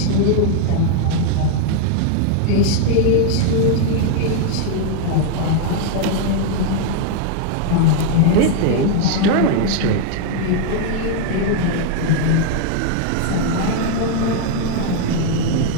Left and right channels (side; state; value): both; different; correlation 0.00